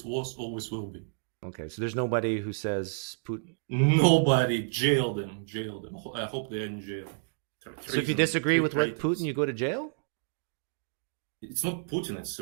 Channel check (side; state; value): left; silent; digital silence